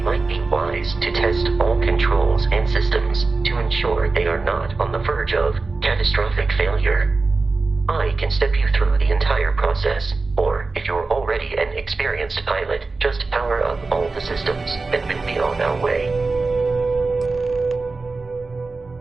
might be wise to test all controls and systems to ensure they are not on the verge of catastrophic failure. I can step you through the entire process, or if you're already an experienced pilot, just power up all the systems and we'll be on our way.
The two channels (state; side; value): quieter; left; 3.8 dB